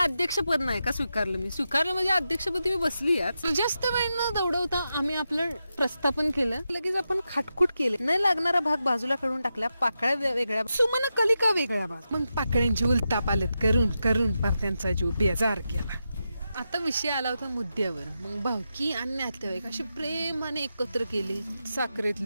नाही का स्वीकारलं मी. स्वीकारलं म्हणजे अध्यक्षपदी मी बसली. आज जास्त वेळ न दौडवता आम्ही आपलं प्रस्थापन केलं. लगेच आपण खाटखुट केले. न लागणारा भाग बाजूला काढून टाकला. पाकळ्या वेगळ्या, सुमन कलिका वेगळ्या भाग. मग पाकळ्यांची उलतापालत करून करून पार त्यांचा जीव बेजार केला. आता विषय आला होता मुद्द्यावर. मग भावकी आणि नातेवाईक अशी प्रेमाने एकत्र केले. साखरेत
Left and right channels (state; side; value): inverted; both; correlation -0.88